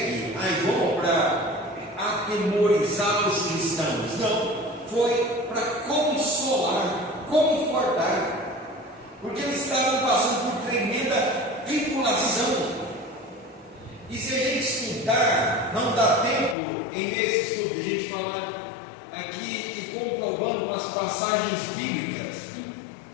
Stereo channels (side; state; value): right; drops out; at 16.6 s